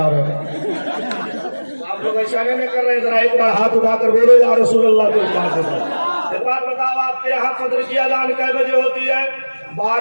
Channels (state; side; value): inverted; both; correlation -1.00